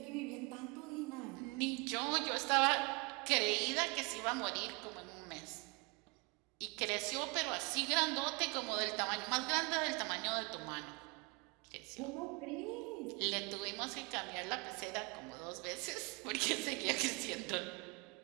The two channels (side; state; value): left; quieter; 28.8 dB